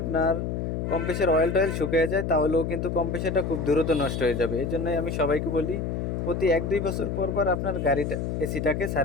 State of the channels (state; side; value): noise; left; hum, 2 dB below the sound